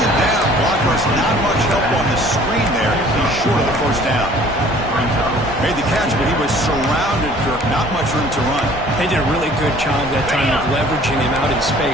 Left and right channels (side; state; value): both; normal; correlation 0.52